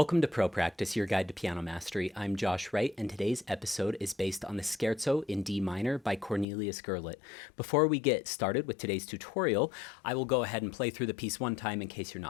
to Pro Practice, your guide to piano mastery. I'm Josh Wright, and today's episode is based on the Scherzo in D minor by Cornelius Gurlitt. Before we get started with today's tutorial, I will go ahead and play through the piece one time in case you're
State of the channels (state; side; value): drops out; right; at 6.5 s